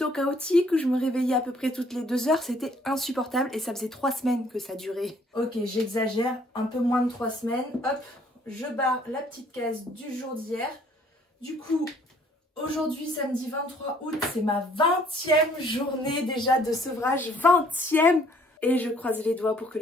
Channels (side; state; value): both; normal; correlation 0.61